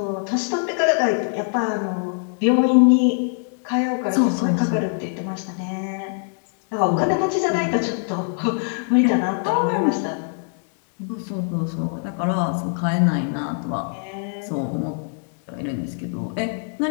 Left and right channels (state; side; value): silent; right; 58 dB below the other